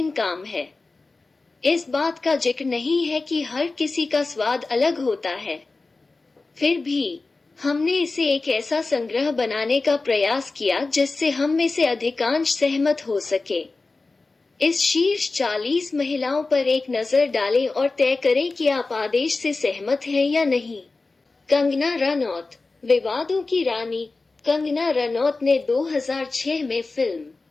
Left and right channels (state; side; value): quieter; right; 3.6 dB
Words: काम है। इस बात का जिक्र नहीं है कि हर किसी का स्वाद अलग होता है। फिर भी हमने इसे एक ऐसा संग्रह बनाने का प्रयास किया जिससे हम में से अधिकांश सहमत हो सके। इस शीर्ष 40 महिलाओं पर एक नजर डालें और तय करें कि आप आदेश से सहमत हैं या नहीं। कंगना रनौत, विवादों की रानी। कंगना रनौत ने 2006 में